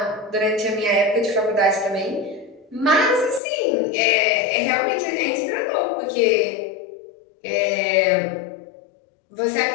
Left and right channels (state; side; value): drops out; right; at 3.4 s